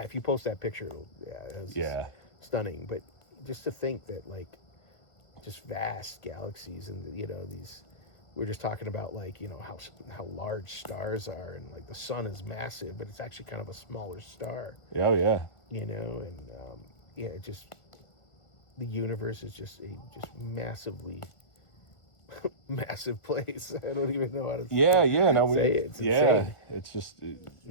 if you post that picture, it's stunning. But just to think that like, just vast galaxies, and these, we're just talking about like how large stars are, and like the sun is massive, but it's actually kind of a smaller star. Oh yeah. And just the universe is just massively massive place. I don't even know how to say it. It's insane. It's just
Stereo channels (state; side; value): late; right; 1.4 ms